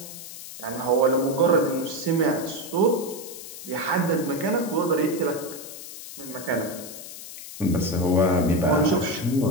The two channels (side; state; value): left; noise; hiss, 12 dB below the sound